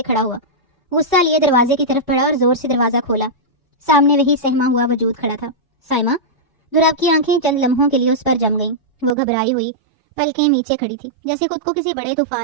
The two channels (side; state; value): left; drops out; at 9.2 s